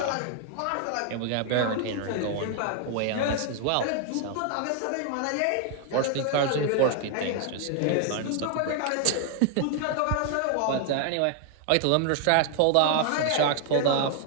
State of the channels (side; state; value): both; different; correlation 0.00